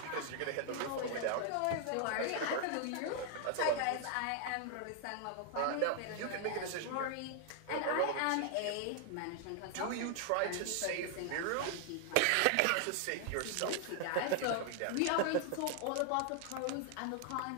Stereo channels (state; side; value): different; both; correlation 0.00